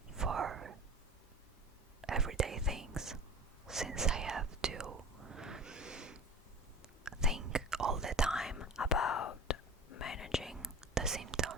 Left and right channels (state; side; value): normal; both; correlation 0.36